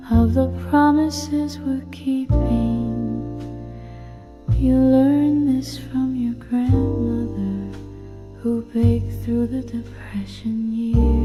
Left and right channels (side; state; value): both; identical; correlation 1.00